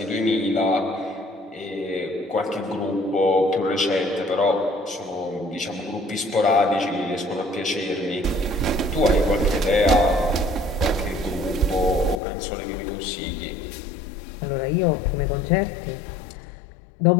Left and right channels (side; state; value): right; drops out; at 12.2 s